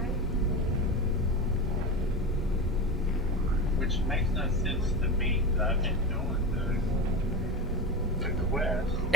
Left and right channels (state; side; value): normal; both; correlation 0.22